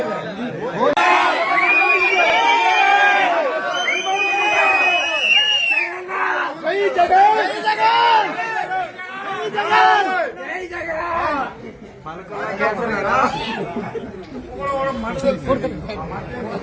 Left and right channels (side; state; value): both; identical; correlation 1.00